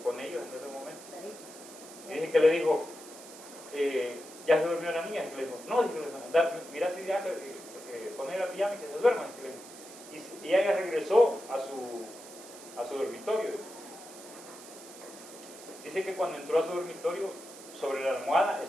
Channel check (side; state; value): right; noise; hiss, 17 dB below the sound